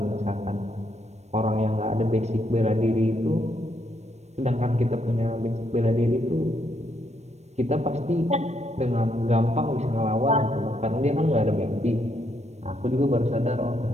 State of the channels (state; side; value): late; left; 0.32 ms